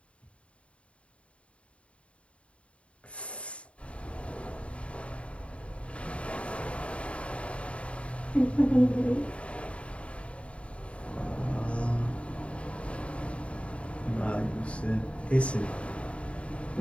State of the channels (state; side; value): late; right; 0.062 ms